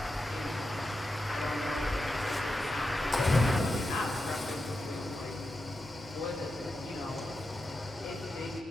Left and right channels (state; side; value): normal; both; correlation 0.89